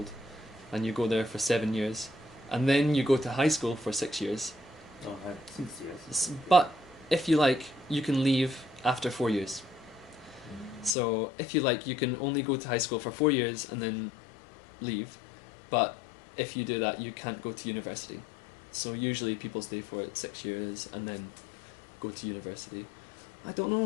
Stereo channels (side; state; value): right; drops out; at 11.0 s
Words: And you go there for 7 years. And then you go to high school for 6 years. Oh, 6 years. But if you like, you can leave after 4 years. So if you like, you can only go to high school for 4 years and then leave. But if you do that, you can't go to university. So usually people stay for 6 years and then go to university. I don't